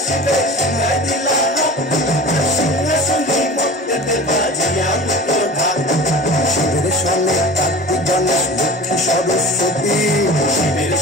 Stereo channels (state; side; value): normal; both; correlation 0.36